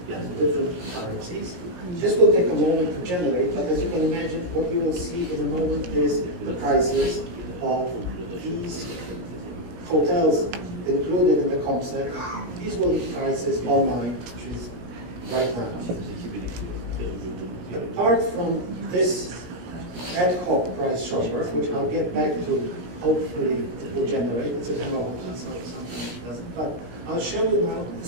and different currencies. This will take a moment to generate, but as you can imagine, what you will see in a moment is the prices of these hotels included in the comp set. These will be prices online, which is right now. Apart from this ad hoc price shopper, which I'll get back to, hopefully it will generate. It's a demo hotel, so sometimes it doesn't. But I'll show you now the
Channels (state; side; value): late; left; 17 ms